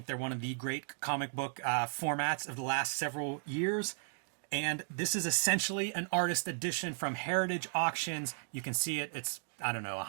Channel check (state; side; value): silent; left; digital silence